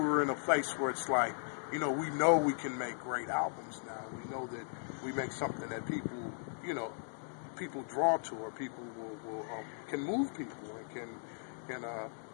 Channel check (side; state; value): right; silent; digital silence